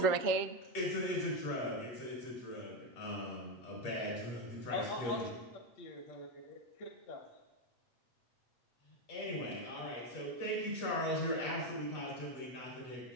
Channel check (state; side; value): late; right; 8.1 ms